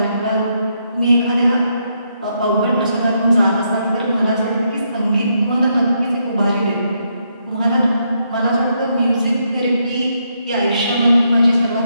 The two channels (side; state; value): both; inverted; correlation -0.78